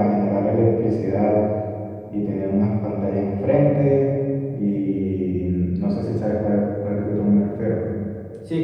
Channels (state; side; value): identical; both; correlation 1.00